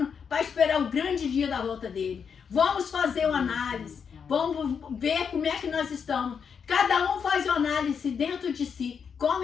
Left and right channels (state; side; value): quieter; right; 6.7 dB